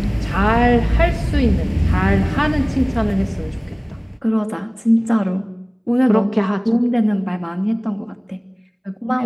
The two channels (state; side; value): identical; both; correlation 1.00